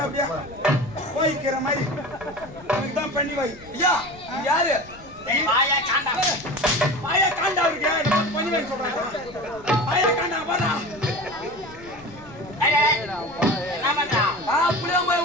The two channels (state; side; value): noise; left; rumble, 21 dB below the sound